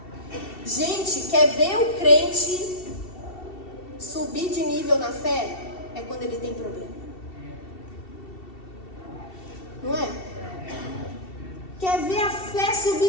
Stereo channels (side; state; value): right; late; 2.7 ms